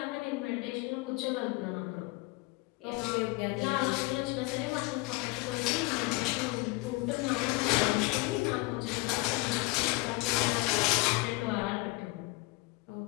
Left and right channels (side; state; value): right; quieter; 23.6 dB